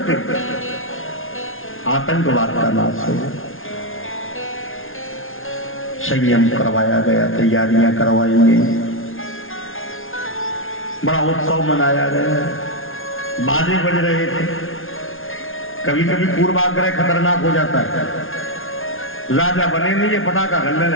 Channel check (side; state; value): right; late; 0.60 ms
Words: आतंकवाद का नाश हो, संयम करवाया गया, तैयारियां करवाई गई, बड़ा उत्सव मनाया गया, बाजे बज रहे थे। कभी कभी पूर्वाग्रह खतरनाक हो जाता है। राजा बने नहीं, ये पटाखा गलने